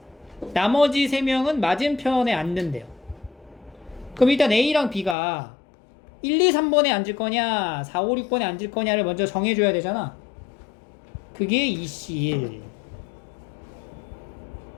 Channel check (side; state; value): right; drops out; at 5.2 s